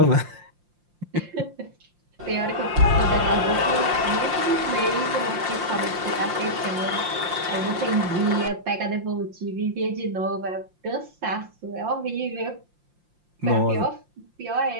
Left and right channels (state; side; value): late; left; 5.7 ms